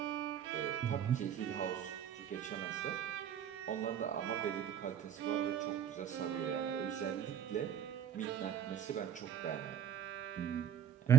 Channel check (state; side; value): quieter; left; 9.2 dB